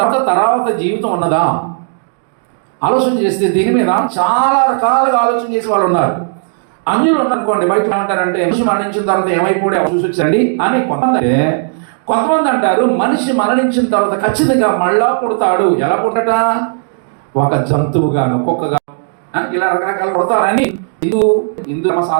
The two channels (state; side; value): silent; left; digital silence